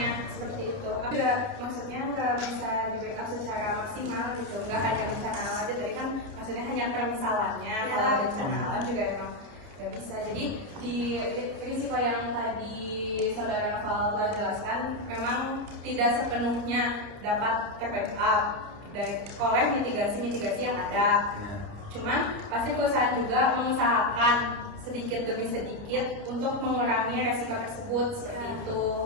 seperti itu. Maksudnya nggak bisa diberikan secara maksimal gitu, nggak hanya bencana alam aja. Tadi kan maksudnya hanya permisalannya, kalau bencana alam juga emang nggak bisa. Jadi di risiko yang tadi saudara Noval jelaskan memang tidak sepenuhnya dapat terbackup oleh mitigasi yang ada. Cuman pasti perusahaan juga mengusahakan sedikit demi sedikit untuk mengurangi resiko tersebut seperti itu.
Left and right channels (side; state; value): left; late; 29 ms